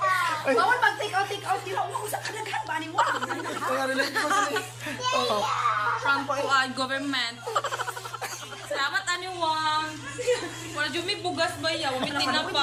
Bawal mag-take out, di ba? Umausap ka daghan ba ni wang? Kaya relate ko sa oh. From government. Salamat ani wang. Wala jud mi bugas ba ya, wala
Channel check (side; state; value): both; identical; correlation 1.00